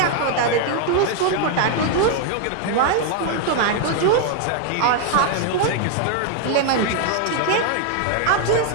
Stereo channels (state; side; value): different; both; correlation 0.00